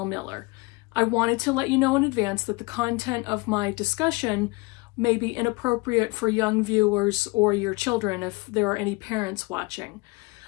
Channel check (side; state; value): right; quieter; 25.6 dB